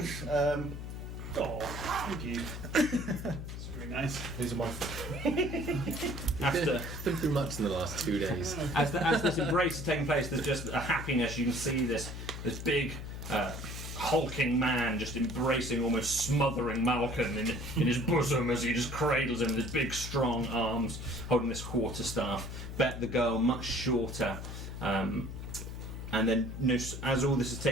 Oh, thank you. It's very nice. These are my. After Been through much in the last 2 days. as this embrace is taking place, there's just a happiness. You can see this big, hulking man just embracing, almost smothering Malcolm in his bosom as he just cradles him with his big, strong arms, holding this quarterstaff. Bet the girl, much shorter. And then, as all this is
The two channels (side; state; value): left; noise; hum, 8 dB below the sound